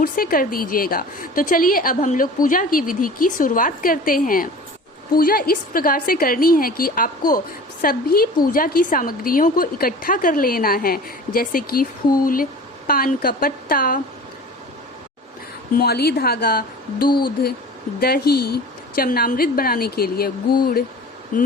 से कर दीजिएगा। तो चलिए अब हम लोग पूजा की विधि की शुरुआत करते हैं। पूजा इस प्रकार से करनी है कि आपको सभी पूजा की सामग्रियों को इकट्ठा कर लेना है, जैसे कि फूल, पान का पत्ता, मौली धागा, दूध, दही, चमनामृत बनाने के लिए गुड़,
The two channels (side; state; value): both; normal; correlation 0.40